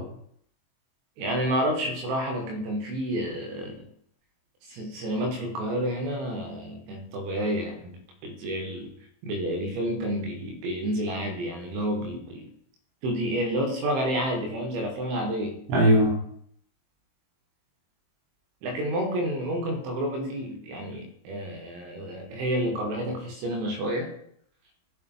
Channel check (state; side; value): late; left; 23 ms